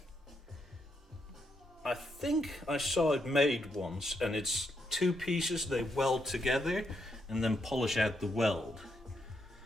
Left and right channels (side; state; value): both; normal; correlation 0.79